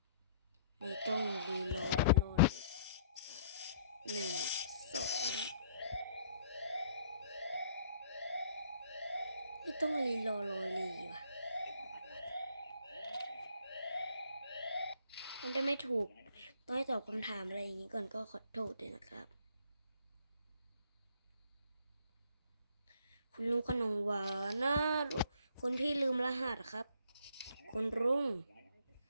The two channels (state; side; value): inverted; both; correlation -0.62